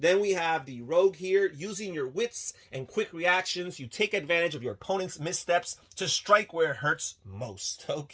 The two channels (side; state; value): both; identical; correlation 1.00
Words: we have the rogue here. Using your wits and quick reactions, you take advantage of your opponent's missteps to strike where it hurts most.